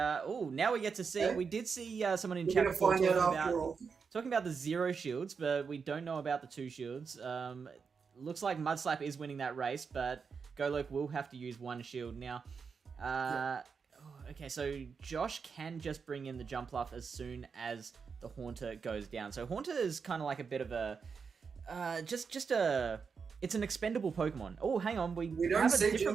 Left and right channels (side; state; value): left; quieter; 5.7 dB